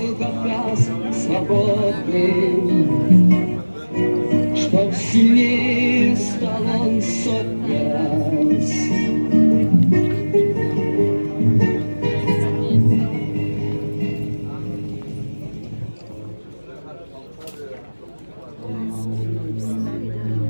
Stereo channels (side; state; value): both; inverted; correlation -1.00